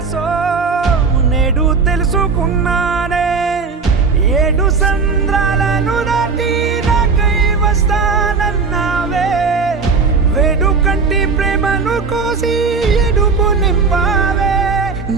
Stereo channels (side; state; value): left; quieter; 4.9 dB